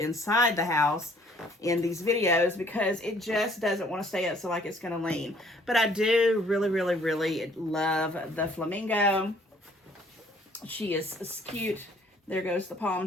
the house in these videos, because it just doesn't want to stay up, so like it's going to lean. But I do really, really, really love the flamingo. She is cute. There goes the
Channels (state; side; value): normal; both; correlation 0.59